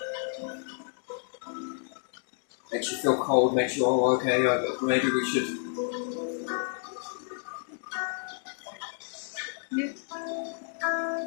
Makes you feel cold, makes you, oh, okay, maybe we should. Yeah.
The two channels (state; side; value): silent; right; digital silence